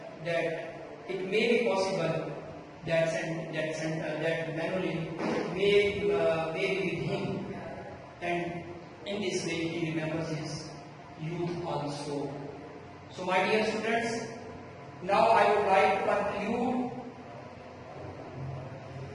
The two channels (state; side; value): identical; both; correlation 1.00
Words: may be possible that Manuel may be with him, and in this way he remembers his youth also. So, my dear students, now I would like to conclude